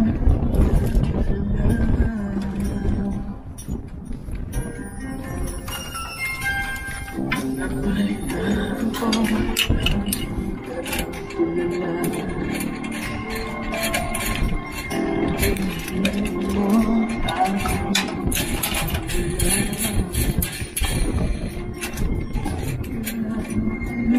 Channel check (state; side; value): identical; both; correlation 1.00